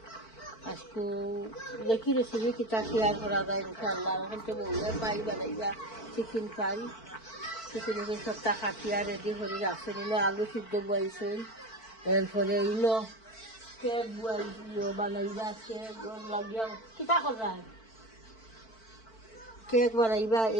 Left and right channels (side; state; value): right; late; 4.5 ms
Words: আজকে দেখি রেসিপি কিতা শেয়ার করা যায় ইনশাআল্লাহ। এখন তো বউয়ে ফ্রাই বানাইবা চিকেন ফ্রাই, চিকেনকে সবটা কাটিয়া রেডি করে রাখছেন। ইনো আলু সিদ্ধ বইছেন, এরপরে ইনো কেক বানাইবা, কেক লাগিয়া কিতা করা কেক বানাইবা,